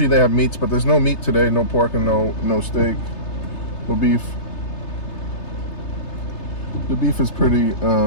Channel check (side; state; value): right; late; 3.3 ms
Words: they have meats, but there's no meat today. No pork and no steak, no beef. The beef is pretty